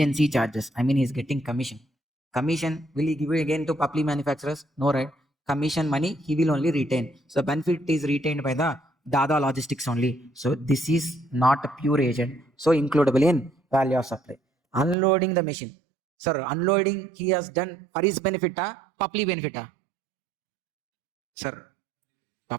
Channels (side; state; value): left; drops out; at 15.0 s